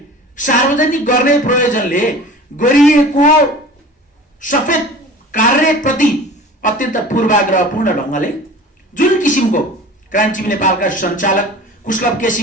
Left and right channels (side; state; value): both; normal; correlation 0.40